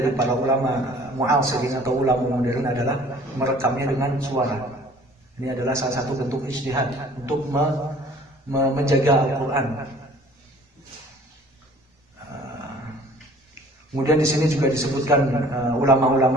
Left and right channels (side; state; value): both; normal; correlation 0.51